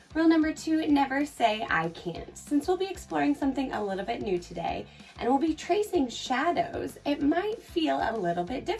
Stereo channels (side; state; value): both; identical; correlation 1.00